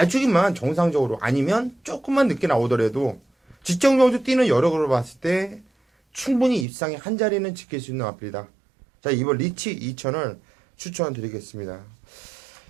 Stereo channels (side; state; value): left; drops out; at 6.7 s